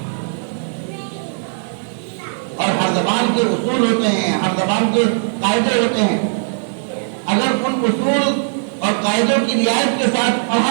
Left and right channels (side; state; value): left; silent; digital silence